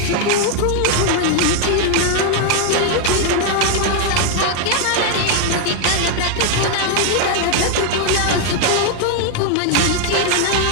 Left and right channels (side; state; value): both; different; correlation 0.01